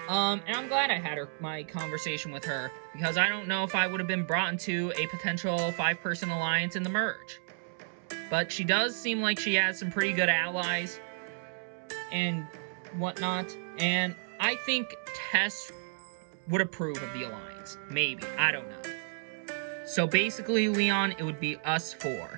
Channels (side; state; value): left; silent; 57 dB below the other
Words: And I'm glad I had my conversation with her, because I don't know if I would have been brought into a potential 5-person alliance in the merge. But she does seem like she has some pretty good allies and whatnot, and I think Tess would approve of the alliance. Maybe. I don't know. So basically, Leon, it would be us